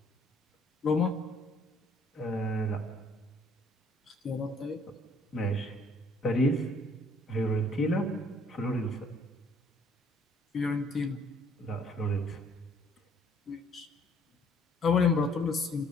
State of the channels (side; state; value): both; normal; correlation 0.61